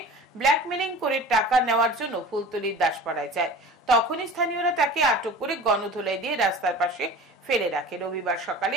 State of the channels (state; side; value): normal; both; correlation 0.38